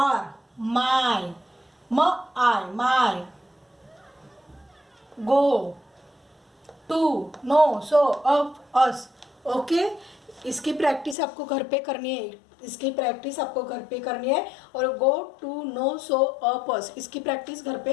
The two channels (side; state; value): right; drops out; at 11.2 s